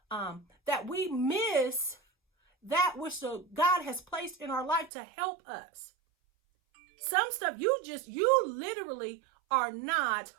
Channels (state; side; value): drops out; left; at 4.9 s